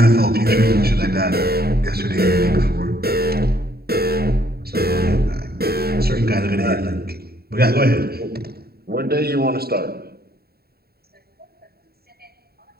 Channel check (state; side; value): late; left; 0.45 ms